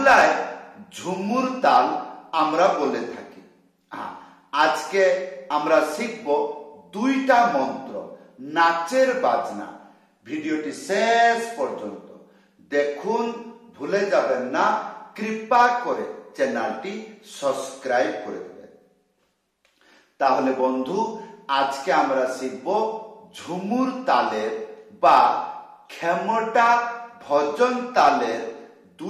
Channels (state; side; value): identical; both; correlation 1.00